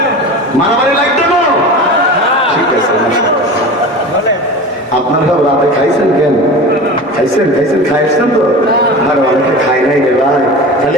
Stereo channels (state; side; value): normal; both; correlation 0.33